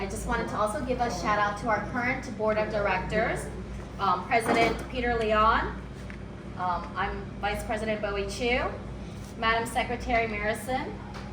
just wanted to also give a shout out to our current board of directors, President Peter Leon, I'm Vice President Bowie Chu, Madam Secretary Marison,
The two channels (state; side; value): identical; both; correlation 1.00